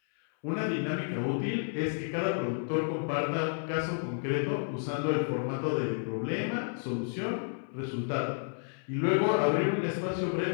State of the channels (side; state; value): right; silent; 57 dB below the other